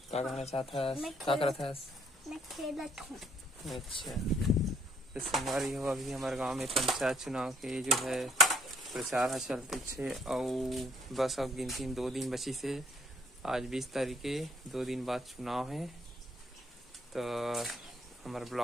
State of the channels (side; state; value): both; normal; correlation 0.66